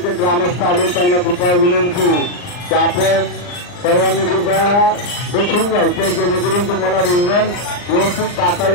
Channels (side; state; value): right; late; 39 ms